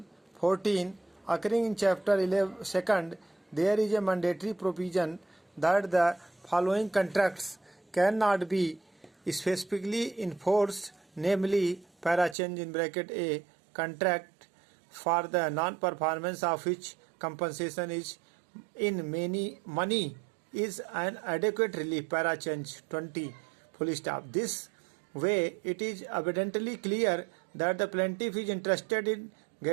14 occurring in chapter 11 second, there is a mandatory provision that the following contracts cannot be specifically enforced, namely para change in bracket A contract for the non-performance of which compensation is in many money is an adequate relief para change 20 full stop. This way it is evidently clear that the plaintiff is interested in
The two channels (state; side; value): drops out; left; at 12.4 s